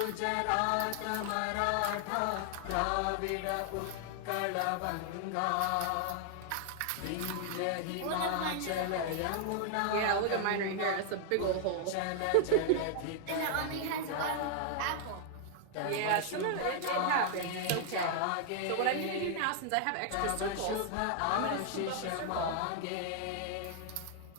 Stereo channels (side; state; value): both; different; correlation 0.00